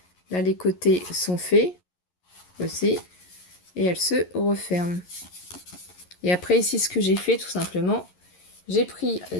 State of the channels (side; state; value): right; late; 11 ms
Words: Là, les côtés sont faits aussi et elle se referme. Et après ici, ce que j'ai fait tout simplement, j'ai pris